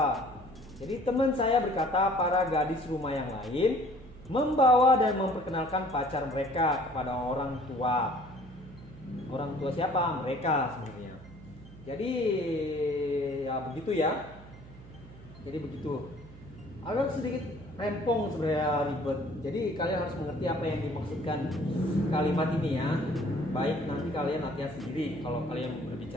Jadi teman saya berkata para gadis rumah yang lain membawa dan memperkenalkan pacar mereka kepada orang tua. Orang tua siapa? Mereka sebenarnya. Jadi ya begitu ya. Jadi begitu. Agak sedikit rempong sebenarnya, ribet. Jadi kalian harus mengerti apa yang dimaksudkan kalimat ini ya. Baik nanti kalian latihan sendiri kalau kalian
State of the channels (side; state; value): right; noise; hum, 18 dB below the sound